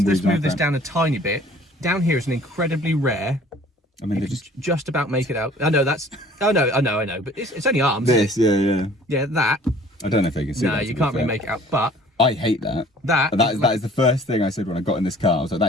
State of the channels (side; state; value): both; normal; correlation 0.52